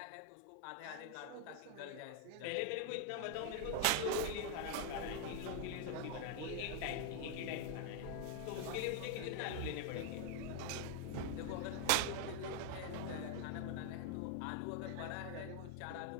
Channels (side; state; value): both; different; correlation 0.01